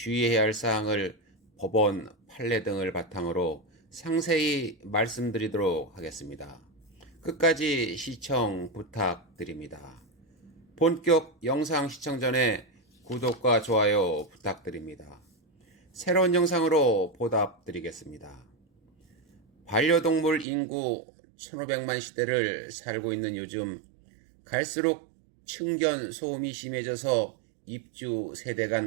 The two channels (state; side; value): drops out; left; at 20.5 s